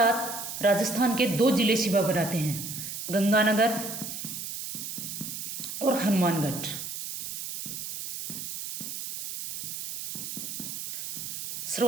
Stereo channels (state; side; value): noise; right; hiss, 7 dB below the sound